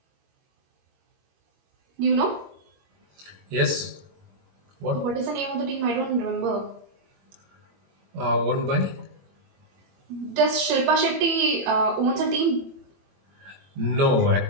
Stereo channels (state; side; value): late; left; 21 ms